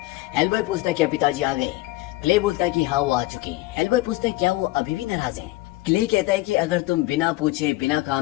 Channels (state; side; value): quieter; right; 18.9 dB